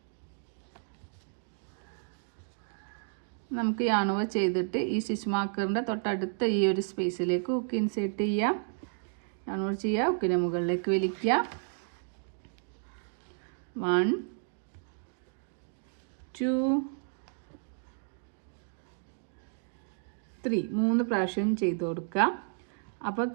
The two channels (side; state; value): left; silent; digital silence